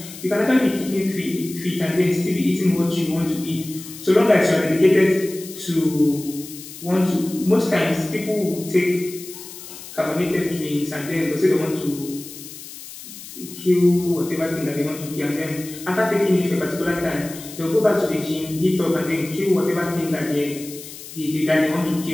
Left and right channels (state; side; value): noise; left; hiss, 14 dB below the sound